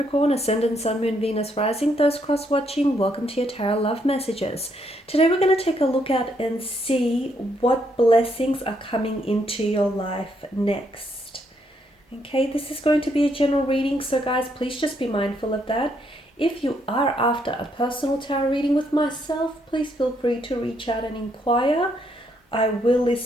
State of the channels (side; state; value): both; normal; correlation 0.74